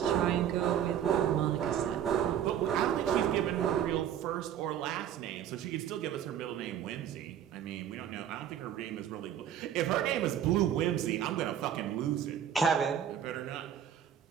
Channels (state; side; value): quieter; left; 9.8 dB